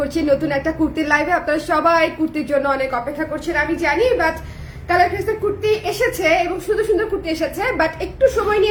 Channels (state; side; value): identical; both; correlation 1.00